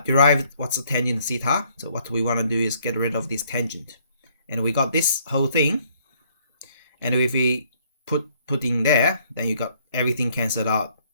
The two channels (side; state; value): both; inverted; correlation -0.65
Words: derived. What's the tangent theta? So what we want to do is get rid of this tangent. And we got this whole thing. And if we put in there, then you got everything cancelled out.